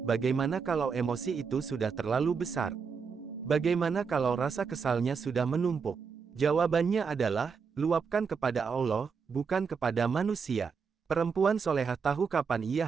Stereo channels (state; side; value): quieter; left; 5.8 dB